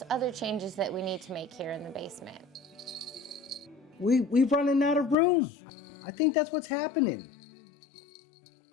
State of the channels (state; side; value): drops out; right; at 5.2 s